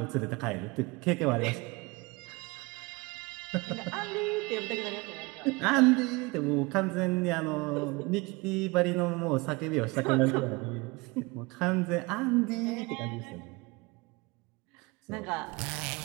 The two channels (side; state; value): left; quieter; 25.3 dB